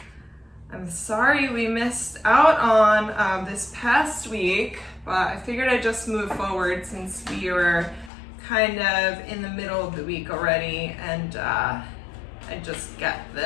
I'm sorry we missed out on this past week, but I figured I'd just move forward since we were kind of in the middle of the week already, and I'd just get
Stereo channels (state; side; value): drops out; right; at 8.1 s